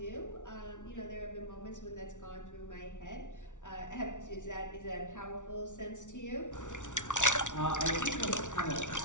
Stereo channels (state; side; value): late; right; 0.86 ms